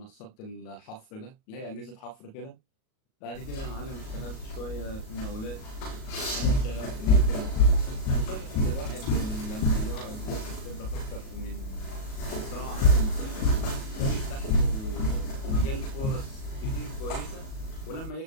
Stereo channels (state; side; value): late; right; 37 ms